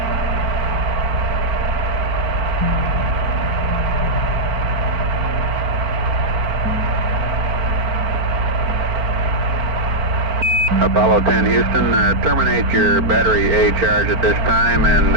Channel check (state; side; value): late; left; 4.5 ms